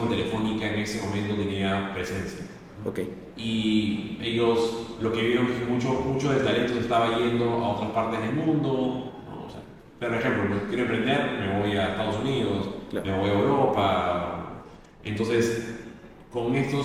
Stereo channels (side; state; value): both; identical; correlation 1.00